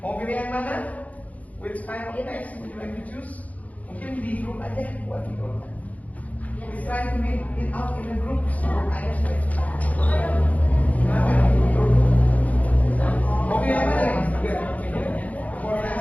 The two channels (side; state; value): right; late; 0.072 ms